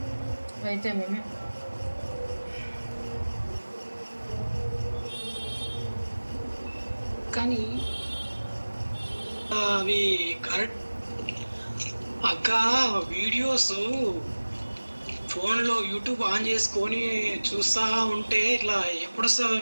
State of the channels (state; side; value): inverted; both; correlation -1.00